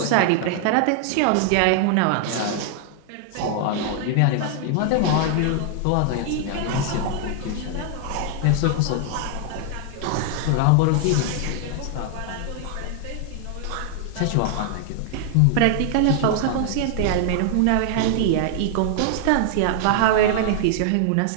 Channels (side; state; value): both; different; correlation 0.00